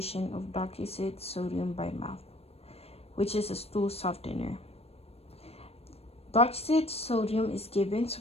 of Docusate sodium by mouth, which is a stool softener. Docusate sodium is given to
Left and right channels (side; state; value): right; late; 0.29 ms